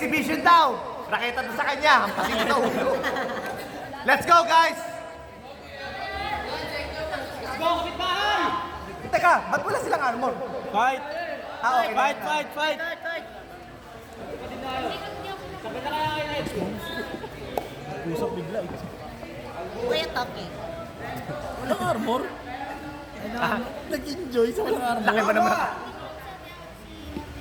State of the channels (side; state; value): both; identical; correlation 1.00